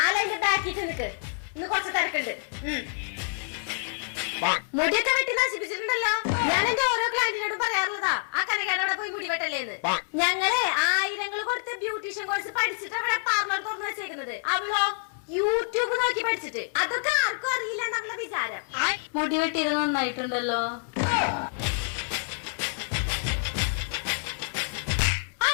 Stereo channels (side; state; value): right; silent; 60 dB below the other